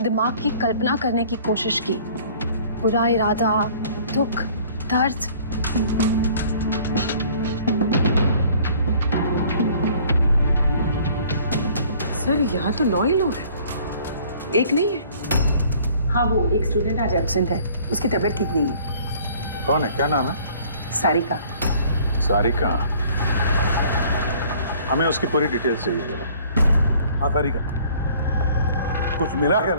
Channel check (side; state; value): both; inverted; correlation -0.54